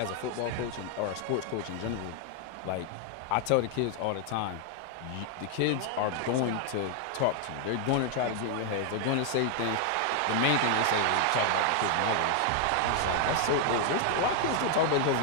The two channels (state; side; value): different; both; correlation 0.00